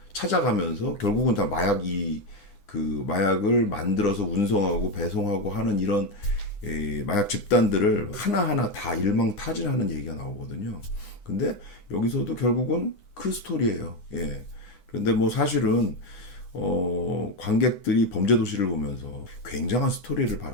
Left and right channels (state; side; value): late; right; 9.7 ms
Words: 찾아가면서 결국은 다 마약을 만들어서 운송하고 배송하고 하는 이런 마약 집단들을 하나하나 다 일망타진하는 얘기가 나오거든요. 근데 여기서도 결국은 그 스토리예요. 예. 그런데 뭐 사실은 관객들이 범죄도시를 보면서 굉장한 스토리를